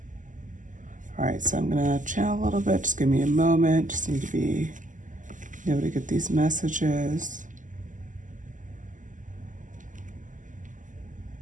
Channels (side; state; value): left; late; 0.37 ms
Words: All right, so I'm gonna channel a little bit. Just give me a moment. Just need to be able to get these messages.